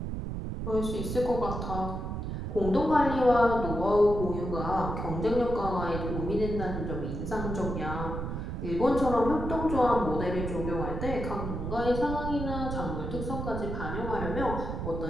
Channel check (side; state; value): right; noise; rumble, 4 dB below the sound